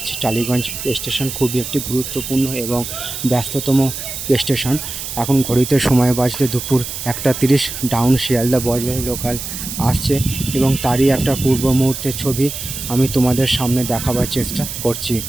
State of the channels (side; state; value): right; noise; hiss, 7 dB below the sound